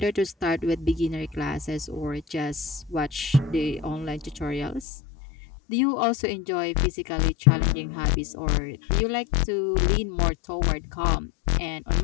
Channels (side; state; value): right; drops out; at 4.9 s